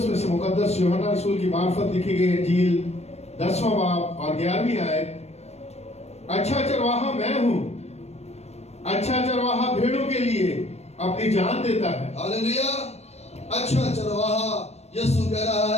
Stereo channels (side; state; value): right; late; 0.31 ms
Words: میں سے مقدس یوحنا رسول کی معرفت لکھی گئی انجیل 10واں باب اور 11ویں آیت. اچھا چرواہا میں ہوں، اچھا چرواہا بھیڑوں کے لیے اپنی جان دیتا ہے. ہاللیلویا. اچھا چرواہا یسوع کہہ رہا